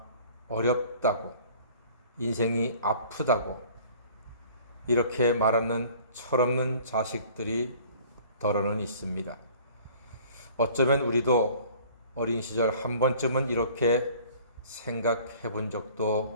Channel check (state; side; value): inverted; both; correlation -0.51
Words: 어렵다고, 인생이 아프다고 이렇게 말하는 철없는 자식들이 더러는 있습니다. 어쩌면 우리도 어린 시절 한 번쯤은 이렇게 생각해 본